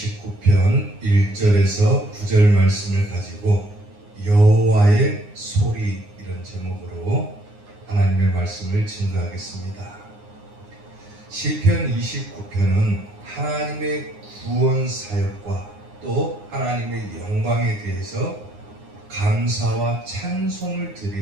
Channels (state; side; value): late; left; 9.7 ms